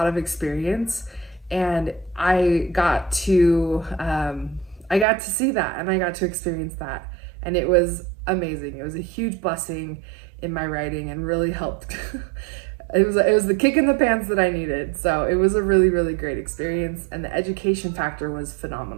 of experience, and I got to see that, and I got to experience that, and it was amazing. It was a huge blessing in my writing and really helped. It was the kick in the pants that I needed. So it was a really, really great experience, and the education factor was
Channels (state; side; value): drops out; left; at 5.1 s